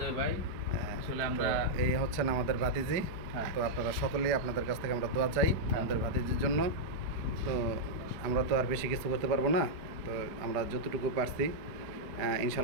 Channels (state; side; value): late; left; 4.7 ms